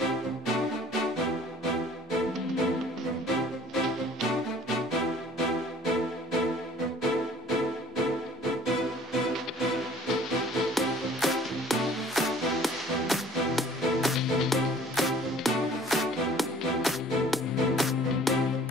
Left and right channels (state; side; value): normal; both; correlation 0.52